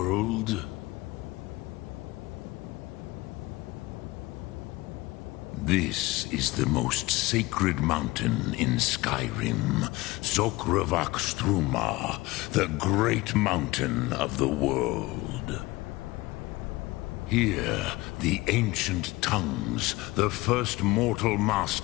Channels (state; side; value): quieter; right; 20.8 dB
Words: This is the most sacred mountain in Skyrim, Zokravakstruma, the great mountain of the world. Here, the ancient tongues, the first mortal